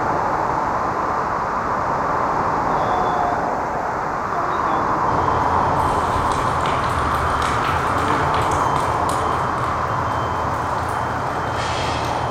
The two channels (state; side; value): identical; both; correlation 1.00